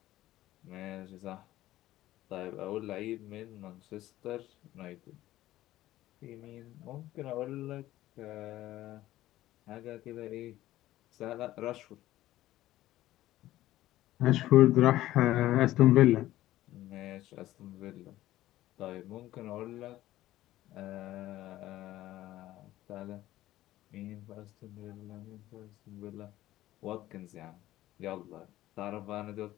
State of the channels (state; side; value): quieter; right; 15.1 dB